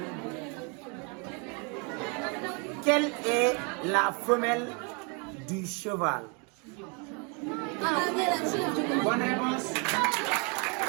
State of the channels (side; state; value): left; quieter; 34.0 dB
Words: Quelle est la femelle du cheval? Bonne réponse.